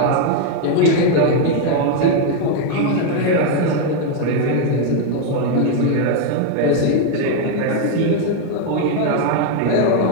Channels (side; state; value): both; different; correlation 0.00